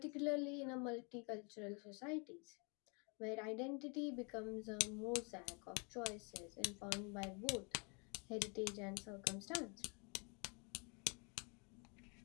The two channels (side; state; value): right; quieter; 33.8 dB